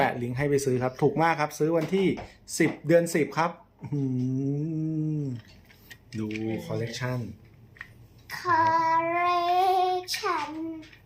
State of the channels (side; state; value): both; identical; correlation 1.00